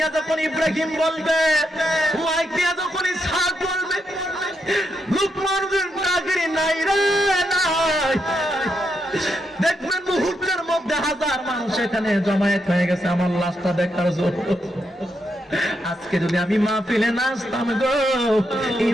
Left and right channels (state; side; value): normal; both; correlation 0.82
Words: যখন ইব্রাহিম বলবে, মাইক দিয়া যখন ইসহাক বলবে, লোকমান হোসেন তাগিরি নাই রে নাই, দেখবেন মুহূর্তের মধ্যে হাজার মানুষ এখানে জমায়েত হয়ে গেছে আমার লাশটা দেখার জন্য। আজকে যদি আমি মাহফিলে নাচতাম গো, এই